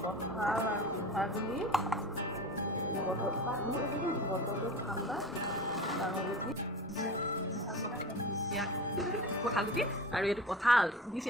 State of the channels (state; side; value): normal; both; correlation 0.33